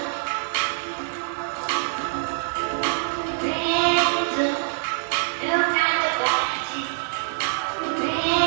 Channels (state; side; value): silent; left; digital silence